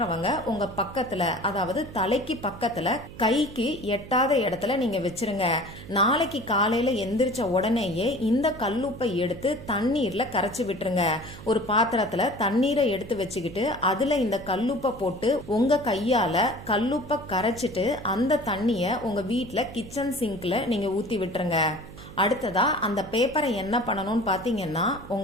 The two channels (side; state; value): right; noise; hum, 15 dB below the sound